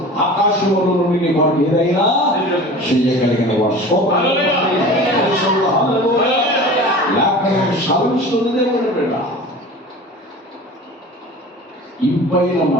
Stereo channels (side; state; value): both; normal; correlation 0.38